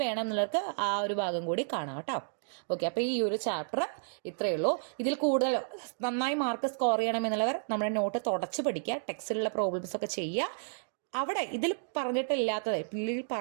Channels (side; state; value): left; silent; digital silence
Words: വേണം എന്നുള്ളവർക്ക് ആ ഒരു ഭാഗം കൂടി കാണാം കേട്ടോ. ഓക്കെ, അപ്പോൾ ഈ ഒരു ചാപ്റ്റർ ഇത്രയേ ഉള്ളൂ. ഇതിൽ കൂടുതൽ നന്നായി മാർക്ക് സ്കോർ ചെയ്യണമെന്നുള്ളവർ നമ്മുടെ നോട്ട് തുടച്ച് പഠിക്കുക, ടെക്സ്റ്റിലുള്ള പ്രോബ്ലംസ് ഒക്കെ ചെയ്യുക. അവിടെ ഇതിൽ പറഞ്ഞിട്ടില്ലാത്തത്, ഇതിൽ